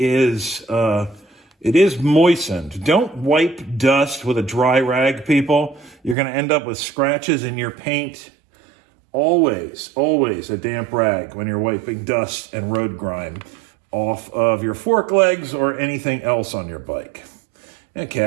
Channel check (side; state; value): left; drops out; at 6.2 s